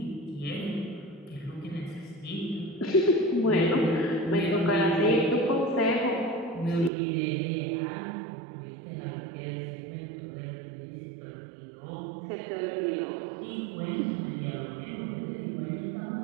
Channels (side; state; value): left; drops out; at 6.9 s